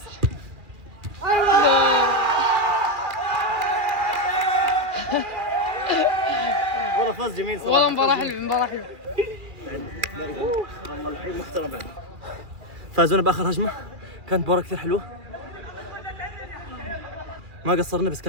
والله فاز جميل صراحه. والله مباراة حلوة، مباراة حلوة. والله الحين محترم بعد. فازونا باخر هجمه، كانت مباراه كثير حلوه، ما قصرنا، بس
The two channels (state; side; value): late; left; 2.4 ms